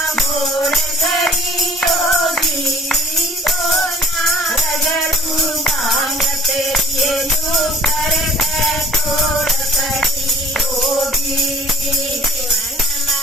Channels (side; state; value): both; normal; correlation 0.50